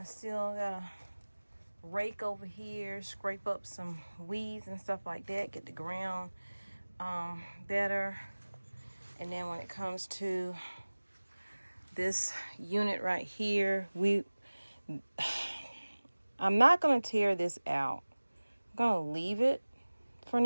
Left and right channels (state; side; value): inverted; both; correlation -1.00